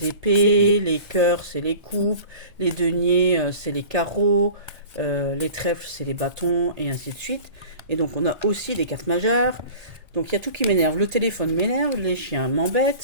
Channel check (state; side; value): late; left; 1.8 ms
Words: épées, les cœurs, c'est les coupes, les deniers, c'est les carreaux, les trèfles, c'est les bâtons, et ainsi de suite. Et donc on a aussi des cartes majeures. Donc il y a tout qui m'énerve. Le téléphone m'énerve, les chiens